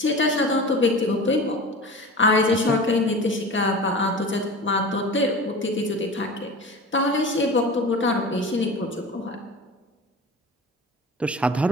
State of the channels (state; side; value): normal; both; correlation 0.35